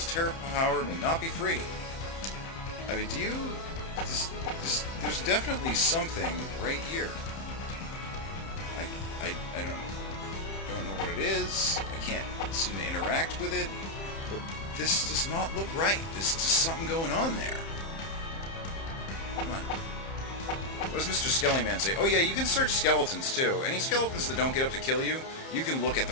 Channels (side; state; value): right; late; 30 ms